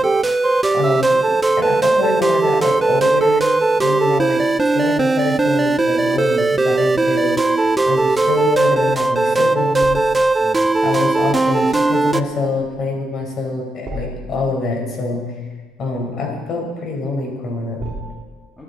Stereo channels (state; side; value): normal; both; correlation 0.87